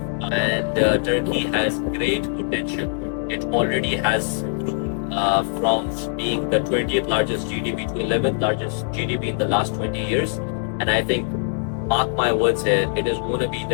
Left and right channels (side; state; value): right; silent; 64 dB below the other